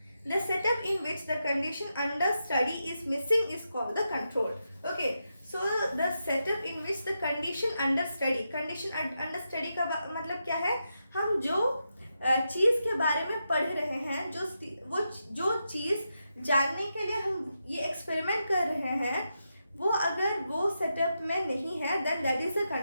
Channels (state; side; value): inverted; both; correlation -0.86